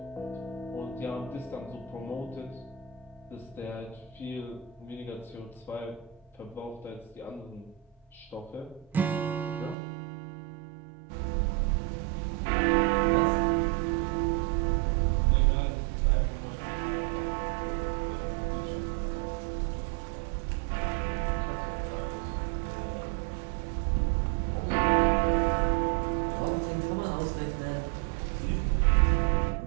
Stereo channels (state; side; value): drops out; left; at 9.8 s